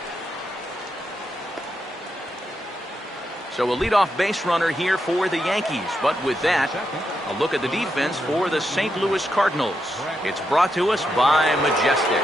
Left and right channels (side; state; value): both; normal; correlation 0.83